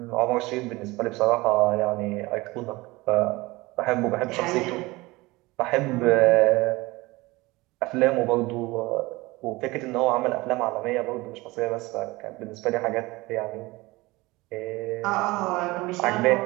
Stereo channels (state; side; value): quieter; left; 21.5 dB